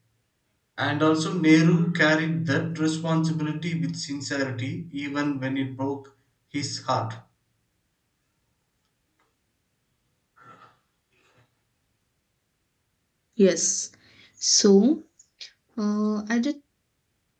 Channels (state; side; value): identical; both; correlation 1.00